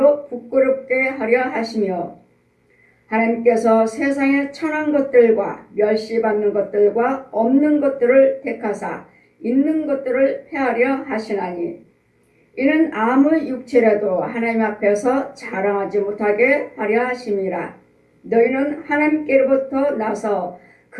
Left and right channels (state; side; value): identical; both; correlation 1.00